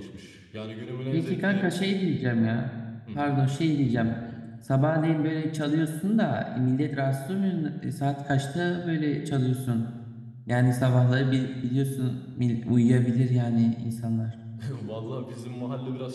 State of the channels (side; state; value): both; identical; correlation 1.00